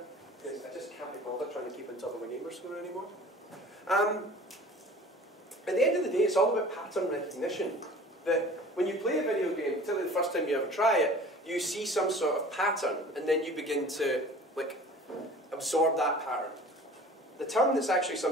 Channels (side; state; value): both; normal; correlation 0.44